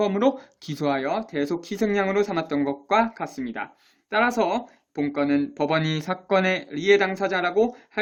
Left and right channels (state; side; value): identical; both; correlation 1.00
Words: 기소하여 대속 희생양으로 삼았던 것과 같습니다. 따라서 본건은 법원이 사건의 리해 당사자라고